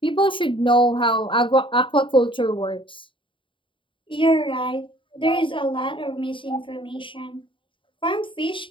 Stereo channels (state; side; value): late; right; 0.25 ms